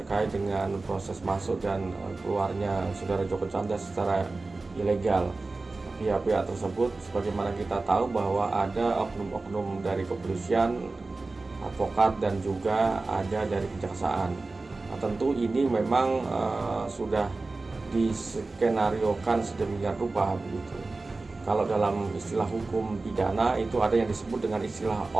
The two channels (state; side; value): quieter; left; 3.5 dB